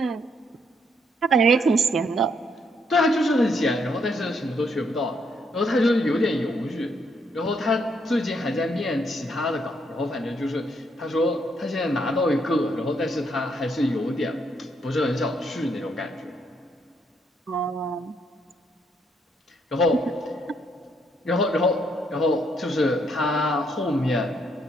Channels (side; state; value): both; normal; correlation 0.73